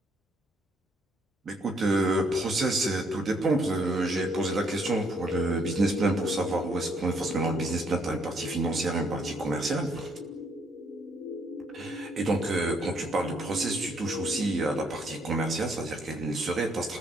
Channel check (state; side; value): normal; both; correlation 0.69